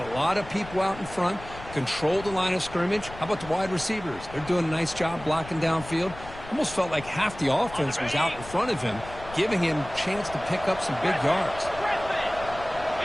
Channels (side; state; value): left; noise; rumble, 15 dB below the sound